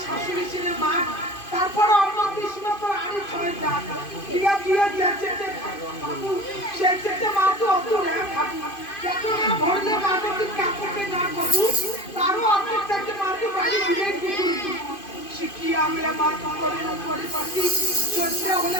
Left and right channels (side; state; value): right; late; 2.5 ms